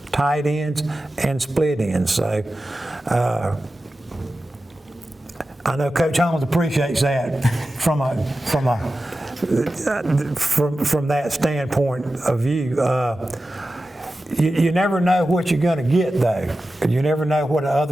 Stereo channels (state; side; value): normal; both; correlation 0.93